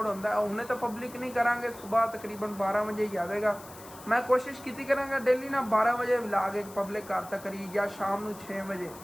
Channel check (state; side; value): noise; left; hiss, 19 dB below the sound